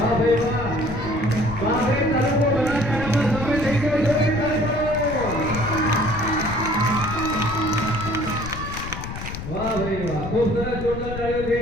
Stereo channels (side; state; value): left; noise; rumble, 8 dB below the sound